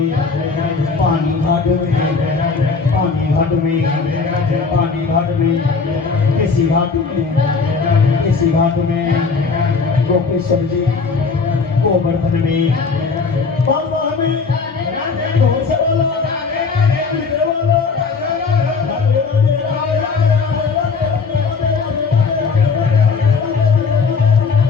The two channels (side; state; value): right; quieter; 4.8 dB